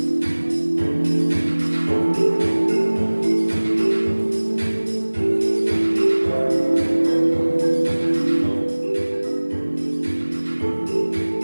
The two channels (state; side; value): inverted; both; correlation -1.00